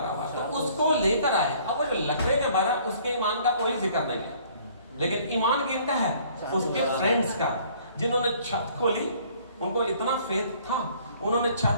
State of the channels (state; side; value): inverted; both; correlation -0.57